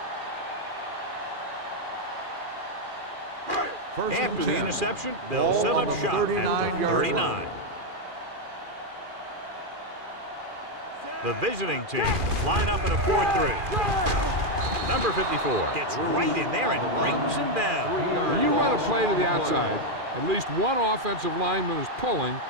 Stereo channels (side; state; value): left; late; 2.4 ms